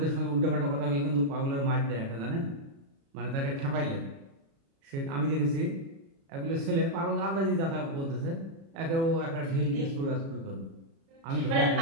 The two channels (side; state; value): left; late; 36 ms